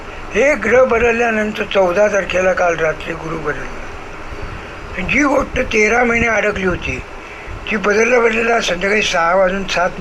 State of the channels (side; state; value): both; identical; correlation 1.00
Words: हे ग्रह बदलल्यानंतर 14 तारखेला काल रात्री गुरु बदलला. जी गोष्ट 13 महिने अडकली होती ती बदलल्या संध्याकाळी